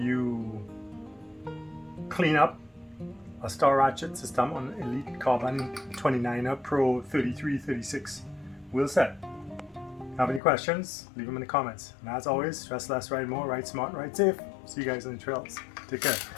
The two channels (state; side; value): drops out; right; at 10.4 s